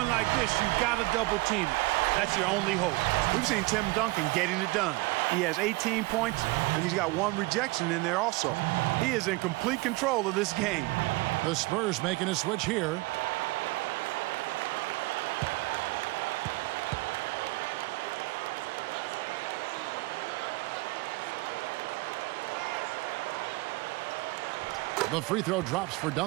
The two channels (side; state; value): left; quieter; 23.0 dB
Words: like this, you've got to double team it. That's your only hope. We've seen Tim Duncan getting it done. He has 18 points, and he's got 1 rejection in there also. He is in complete control of this game. The Spurs making a switch here. The free throw drops for